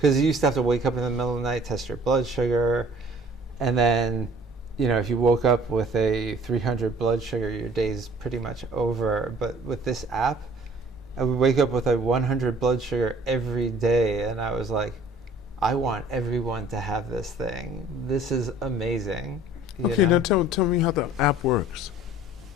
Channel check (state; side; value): normal; both; correlation 0.52